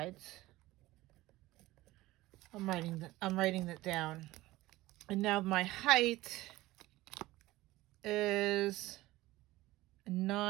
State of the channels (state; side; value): quieter; left; 18.0 dB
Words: I'm writing that down. And now my height is